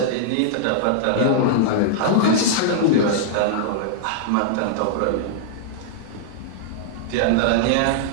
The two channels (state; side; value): different; both; correlation -0.02